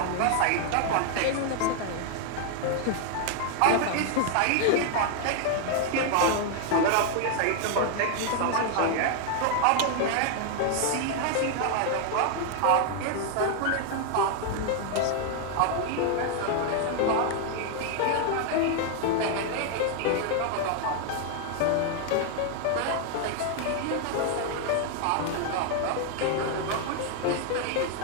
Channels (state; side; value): different; both; correlation 0.00